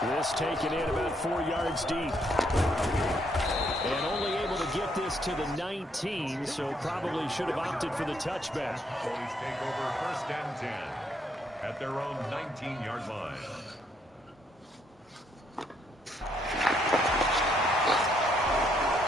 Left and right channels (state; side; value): normal; both; correlation 0.72